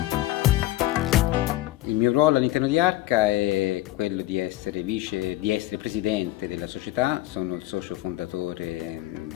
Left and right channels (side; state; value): right; quieter; 16.2 dB